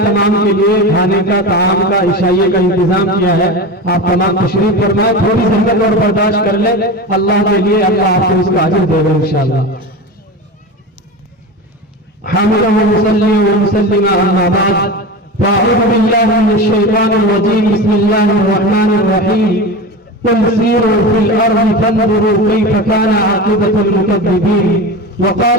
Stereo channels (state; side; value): normal; both; correlation 0.26